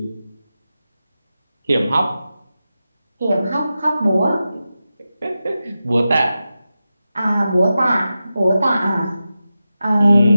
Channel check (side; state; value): both; inverted; correlation -0.92